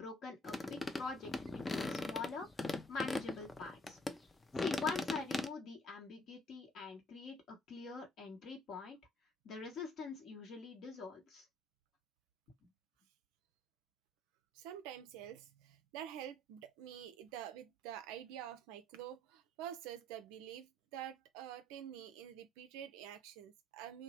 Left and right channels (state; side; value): normal; both; correlation 0.65